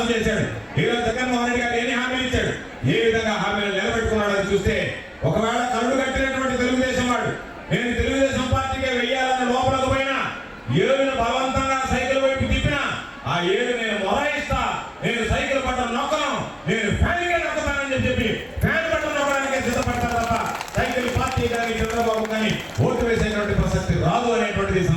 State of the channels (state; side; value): identical; both; correlation 1.00